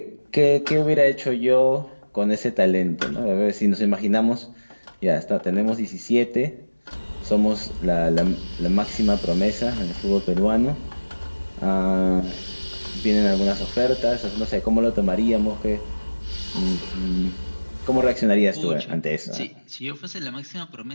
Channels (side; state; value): both; inverted; correlation -1.00